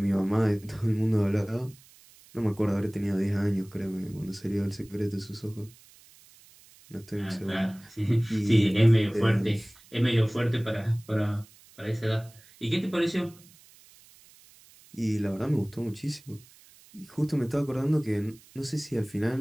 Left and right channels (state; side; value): noise; right; hiss, 25 dB below the sound